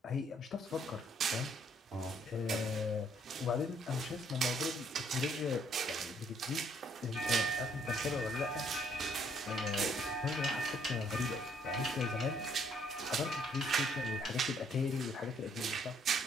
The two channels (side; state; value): both; normal; correlation 0.66